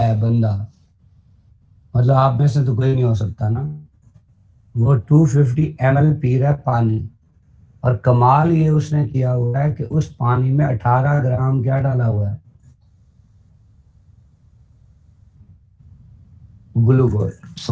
बंदा मतलब आप में से तो कोई नहीं हो सकता ना। वो 250 ml पी रहा है पानी, और कमाल ये उसने किया हुआ है कि उस पानी में 18 ग्राम क्या डाला हुआ है, ग्लूकोज।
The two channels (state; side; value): identical; both; correlation 1.00